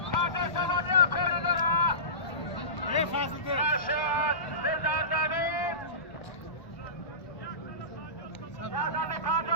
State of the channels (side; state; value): right; late; 1.3 ms